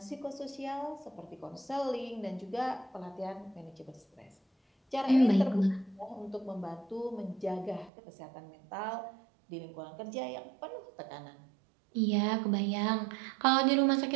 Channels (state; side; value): drops out; left; at 7.9 s